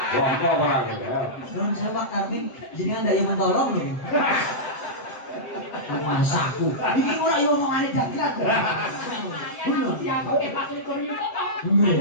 Wah, kok ora ya. Belum saya Pak Tarmin, jenengan ndak yo mentolong lho. Masaku. Iki ora yo omongane dagelan. Bener. Ya kok Pak Likur yuta kok. Bener.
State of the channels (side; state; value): right; late; 7.7 ms